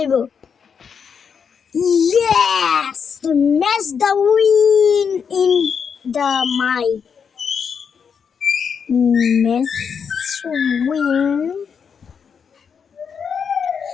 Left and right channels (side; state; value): right; quieter; 6.6 dB